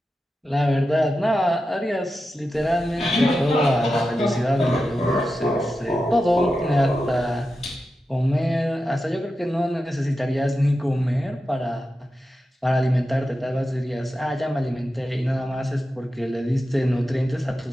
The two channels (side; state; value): both; normal; correlation 0.91